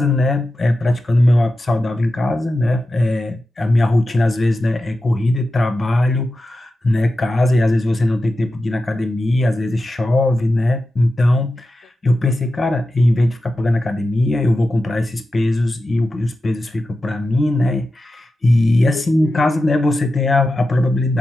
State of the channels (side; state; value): both; normal; correlation 0.92